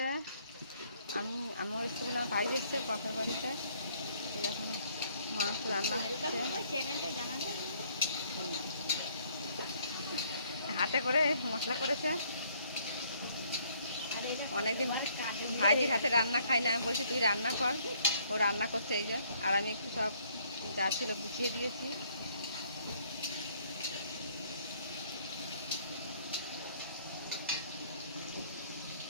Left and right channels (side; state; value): both; inverted; correlation -0.65